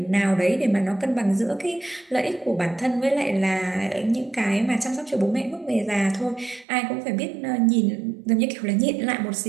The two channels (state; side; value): drops out; left; at 6.7 s